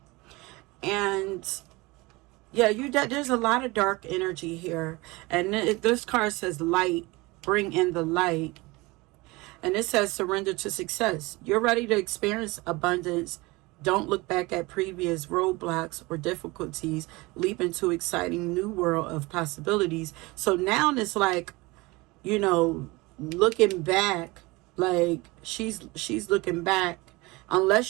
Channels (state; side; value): quieter; left; 23.1 dB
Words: And yeah, there's a lot of dark energy here. And this card says light, bring in the light. And it says surrender to success. You're ready to experience abundance. Don't look back at previous roadblocks or difficulties. Leap into exciting new world of possibilities. So now it's like, you know, looking back, like she's looking back.